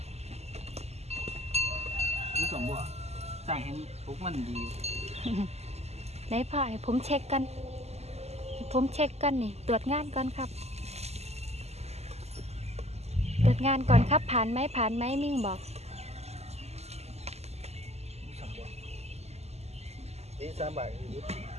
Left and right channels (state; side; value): late; left; 0.30 ms